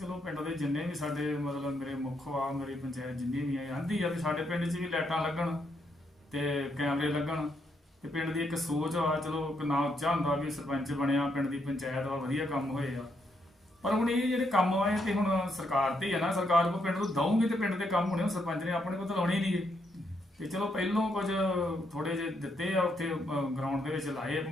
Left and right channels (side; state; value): both; normal; correlation 0.77